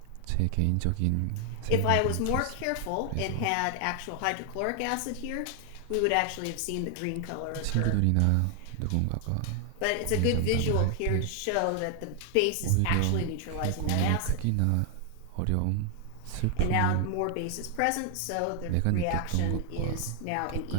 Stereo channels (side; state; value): both; different; correlation 0.00